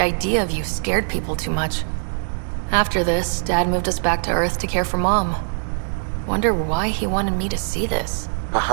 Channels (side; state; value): left; silent; 59 dB below the other